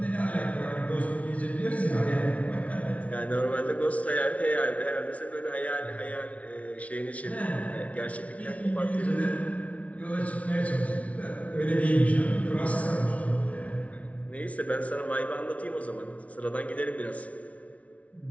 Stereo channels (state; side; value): late; right; 0.066 ms